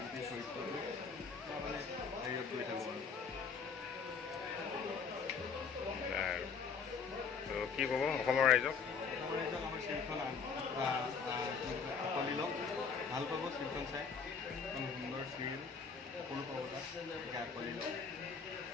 গোটেই চৰিত্ৰটো মানে হেৰিয়ত কৰি থাকোঁ আৰু কি ক'ব অসমৰ ৰাইজক? অসমৰ ৰাইজক আমাৰ চিৰিয়েলখন আঁকোৱালি লওক, ভাল পাব চিৰিয়েলখন চাই। এখন সুন্দৰ চিৰিয়েল, সকলো পাব তাত, গতিকে আঁকোৱালি লওক।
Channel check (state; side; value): quieter; right; 5.7 dB